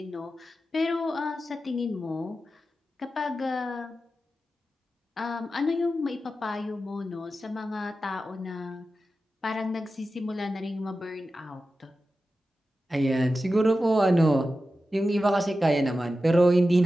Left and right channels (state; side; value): normal; both; correlation 0.93